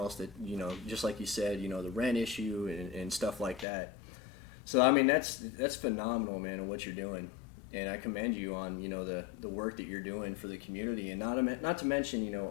that, just like you said, the rent issue and stuff like that. So I mean that's phenomenal, man, on what you're doing, and I commend you on the work that you're doing for the community, and not to mention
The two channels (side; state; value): right; drops out; at 3.7 s